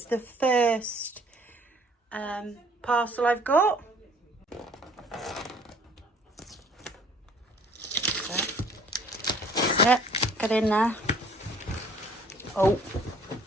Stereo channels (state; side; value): normal; both; correlation 0.56